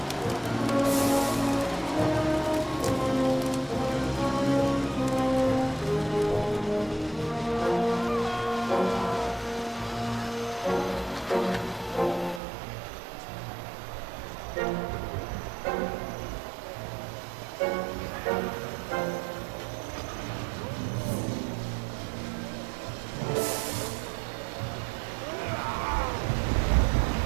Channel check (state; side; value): drops out; left; at 12.4 s